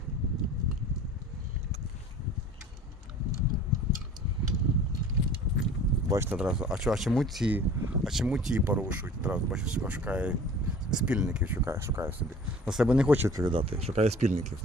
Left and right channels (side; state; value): both; normal; correlation 0.45